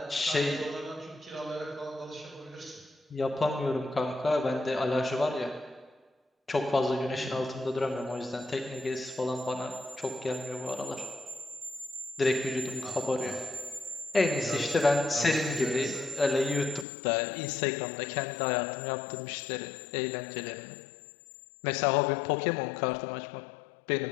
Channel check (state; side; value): drops out; right; at 16.9 s